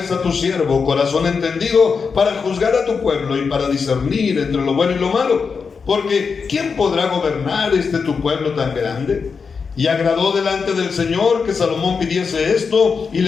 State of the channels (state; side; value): quieter; right; 5.4 dB